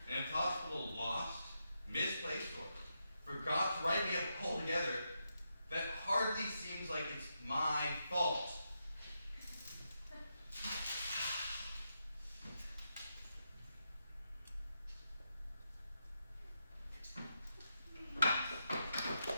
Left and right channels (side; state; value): both; inverted; correlation -0.84